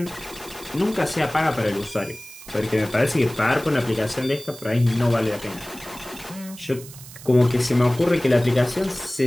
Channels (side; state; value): right; noise; hiss, 17 dB below the sound